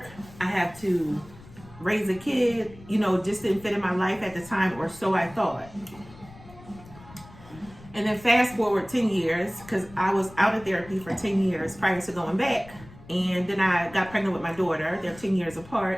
I have to raise a kid, you know, just didn't fit in my life at the time, or so I thought. And then fast forward 10 years, because I was out of therapy for 10 years prior to going back, and then I got pregnant with my daughter. They're 10 years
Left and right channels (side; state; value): left; noise; rumble, 20 dB below the sound